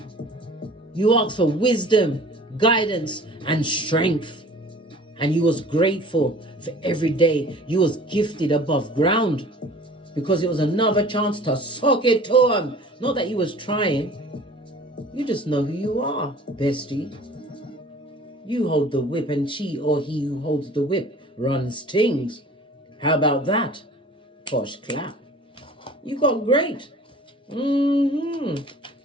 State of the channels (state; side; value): normal; both; correlation 0.46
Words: you asked for wisdom, guidance, and strength. And you was grateful for every day you was gifted above ground because it was another chance to sock it to him. Not that you was trying. You just know who you are, bestie. You hold the whip and she or he who holds the whip runs things. How about that? Posh clap. You got great.